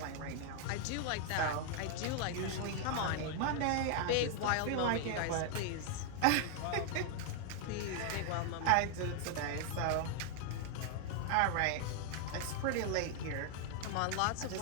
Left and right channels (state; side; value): different; both; correlation 0.00